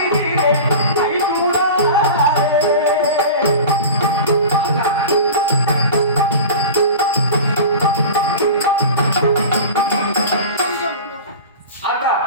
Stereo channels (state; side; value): inverted; both; correlation -0.34